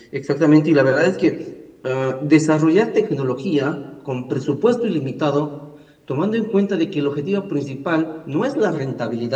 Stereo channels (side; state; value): both; identical; correlation 1.00